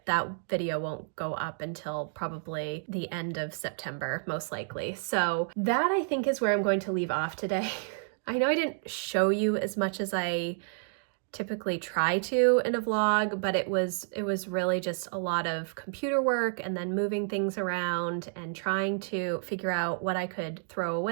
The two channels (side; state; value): left; silent; digital silence